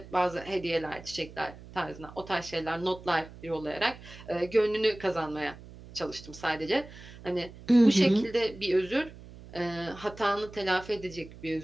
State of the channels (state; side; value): noise; right; hum, 17 dB below the sound